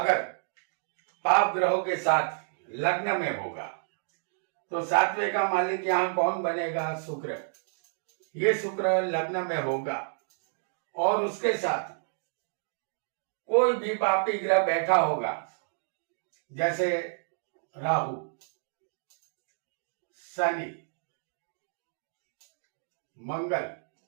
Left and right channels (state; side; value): silent; left; digital silence